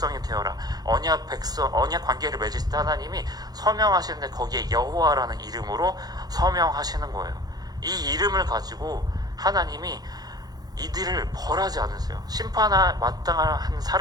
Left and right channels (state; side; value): late; left; 0.19 ms